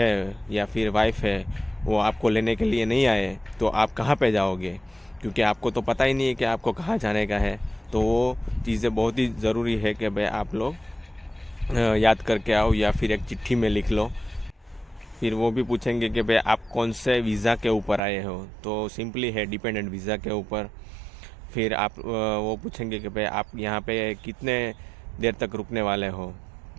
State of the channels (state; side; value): drops out; left; at 18.0 s